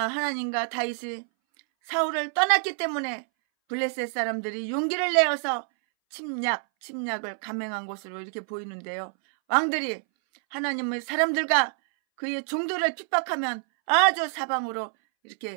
하나님과 다윗이 사울을 떠났기 때문에 블레셋 사람들이 용기를 내어서 침략을 감행한 것으로 이렇게 보이는데요. 왕들이 하나님의 사람들과 그의 종들을 핍박하면 아주 사방으로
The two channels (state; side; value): silent; left; 60 dB below the other